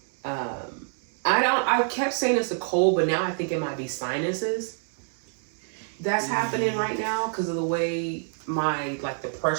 kept saying it's a cold, but now I think it might be sinuses that's happening right now because of the way the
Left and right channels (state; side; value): silent; left; 60 dB below the other